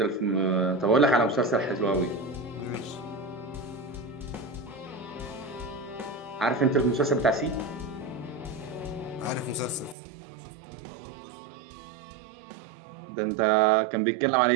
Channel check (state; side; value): drops out; left; at 10.0 s